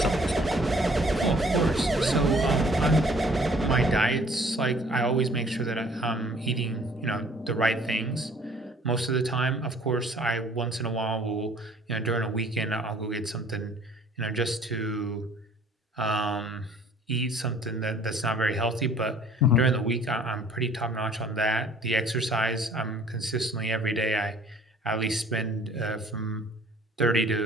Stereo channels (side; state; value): both; normal; correlation 0.55